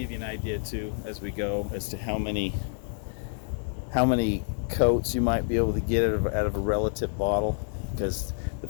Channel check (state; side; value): silent; right; 59 dB below the other